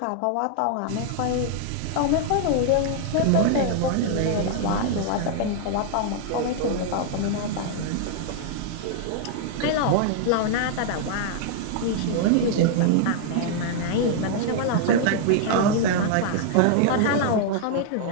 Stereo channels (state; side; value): different; both; correlation -0.01